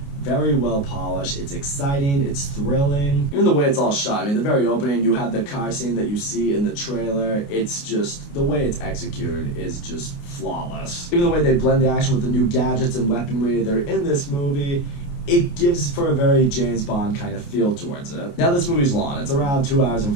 very well polished, it's exciting, it's thrilling. Even the way it's all shot, I mean, the very opening, you have the car scene that you see in the trailer, it's just, the way it's executed is just flawless. Even the way they blend the action with the new gadgets and weaponry that are in this movie, it gives for a very James Bond kind of feel towards it. Now this movie's long. It's around 2 hours and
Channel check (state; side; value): late; right; 28 ms